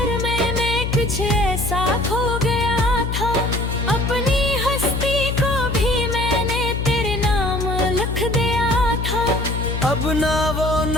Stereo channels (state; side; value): noise; left; hum, 2 dB below the sound